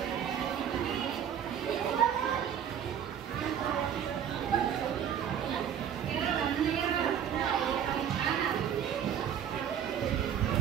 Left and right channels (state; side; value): quieter; left; 8.9 dB